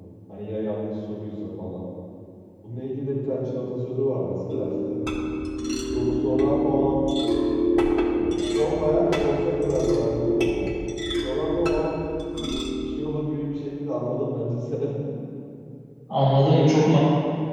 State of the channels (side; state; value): both; identical; correlation 1.00